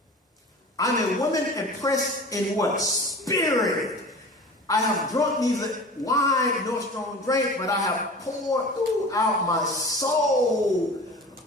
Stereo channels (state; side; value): normal; both; correlation 0.38